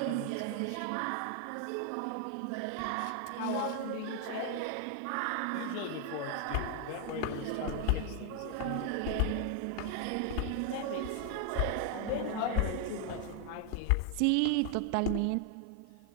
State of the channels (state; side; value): different; both; correlation 0.00